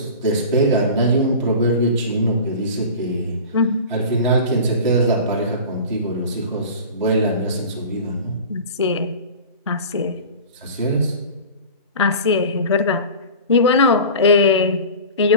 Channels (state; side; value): inverted; both; correlation -0.36